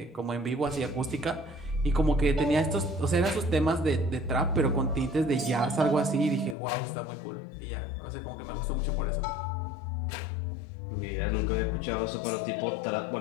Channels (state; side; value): drops out; right; at 6.6 s